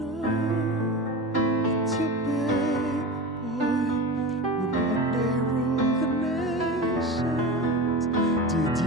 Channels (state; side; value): normal; both; correlation 0.28